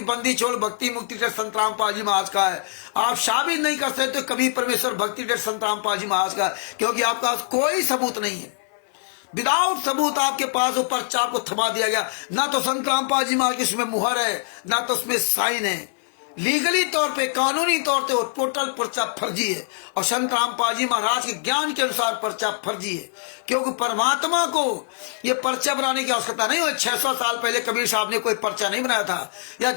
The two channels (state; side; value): silent; right; 55 dB below the other